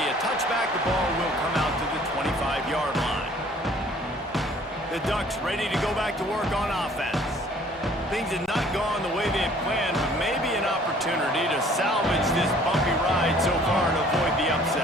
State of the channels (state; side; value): normal; both; correlation 0.55